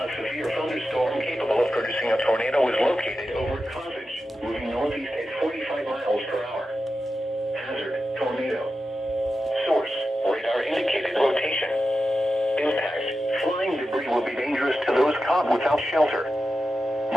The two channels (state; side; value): normal; both; correlation 0.91